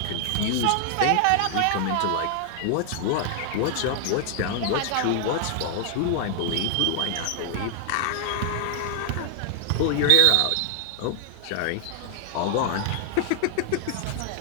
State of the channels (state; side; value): different; both; correlation 0.00